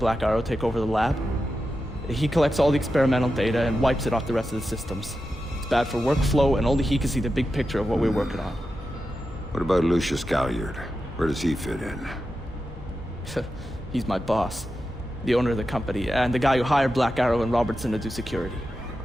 Arrow take over the lab? He collects all the experimental data and wipes it off the rest of the systems. It's bad for workflow, and only he can see the big picture of what we're working on. What about Lucius Galliard? Where does he fit in? He's my boss, the owner of the company, and the guy who hired Black Arrow and Robertson to do security.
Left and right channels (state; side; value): normal; both; correlation 0.90